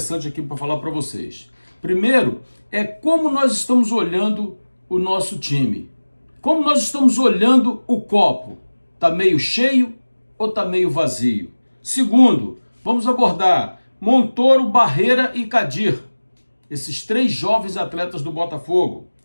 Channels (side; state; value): both; inverted; correlation -1.00